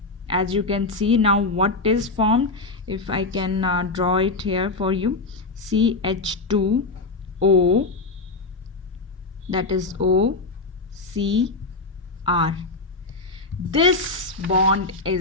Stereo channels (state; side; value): quieter; right; 3.5 dB